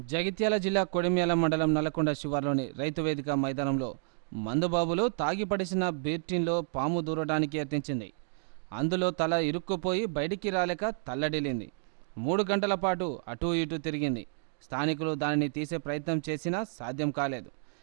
జగిత్యాల జిల్లా కొడిమ్యాల మండలం నల్కొండ శివారులోని రైతు వేదిక మైదానంలో మందుబాబులు తాగి పడిసిన బీర్ టిన్లో పాము దూరడానికి యత్నించింది. అందులో తల ఇరుక్కుపోయి బయటికి రాలేక తల్లడిల్లింది. 3 గంటల పాటు అటూ ఇటూ తిరిగింది. స్థానికులు దానిని తీసే ప్రయత్నం చేసినా సాధ్యం కాలేదు.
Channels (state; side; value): silent; left; digital silence